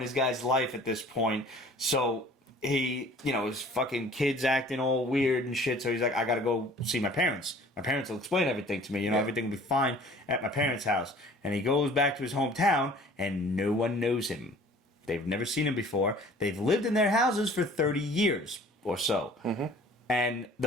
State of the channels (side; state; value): both; normal; correlation 0.50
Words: guy's life at this point. So he, his fucking kid's acting all weird and shit, so he's like, I gotta go see my parents. My parents will explain everything to me, everything will be fine at my parents' house. And he goes back to his hometown, and no one knows him. They've never seen him before. They've lived in their houses for 30 years or so. Mm-hmm. And